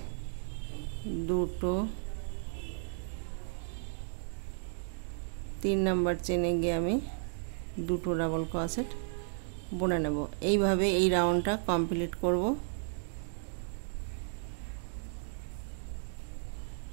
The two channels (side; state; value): left; silent; digital silence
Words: দুটো 3 নাম্বার চেনে গিয়ে আমি দুটো ডাবল ক্রোশেট বুনে নেব। এইভাবে এই রাউন্ডটা কমপ্লিট করব।